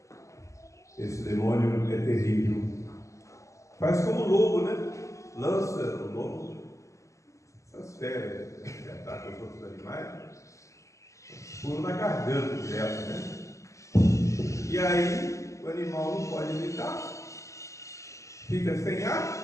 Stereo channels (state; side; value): late; right; 0.15 ms